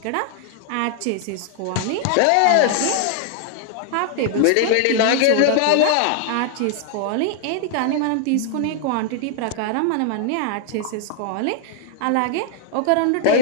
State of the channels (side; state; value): both; different; correlation 0.00